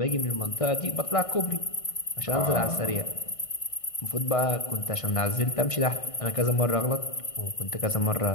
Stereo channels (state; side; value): late; right; 1.5 ms